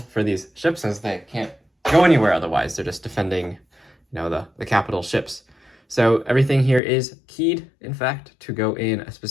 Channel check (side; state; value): right; drops out; at 6.8 s